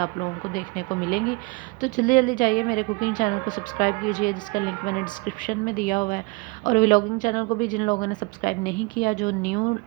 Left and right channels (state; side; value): quieter; left; 25.8 dB